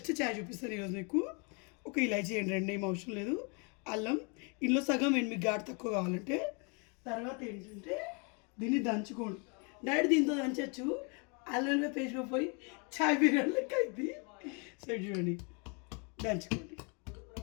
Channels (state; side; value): quieter; right; 34.1 dB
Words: చాయ్ చూపిస్తాను ఈరోజు మీకు. ఒక ఇలాచీ వేయండి, 2 ఏం అవసరం లేదు. అల్లం ఇందులో సగం వేయండి మీకు ఘాటు తక్కువ కావాలంటే. తర్వాత ఏంటంటే దీన్ని దంచుకోండి. డైరెక్ట్ దీంతో దంచచ్చు, అల్లం పేస్ట్ పోయి చాయ్ బిర్యానీ లెక్క అయింది. సో చూడండి, దంచుకోండి.